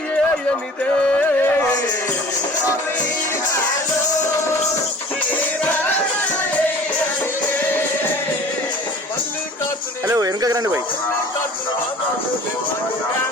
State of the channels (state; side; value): normal; both; correlation 0.45